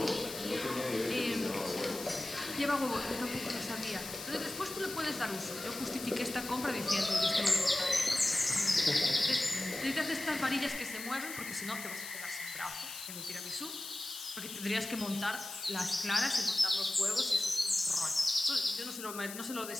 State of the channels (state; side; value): noise; left; hiss, 9 dB below the sound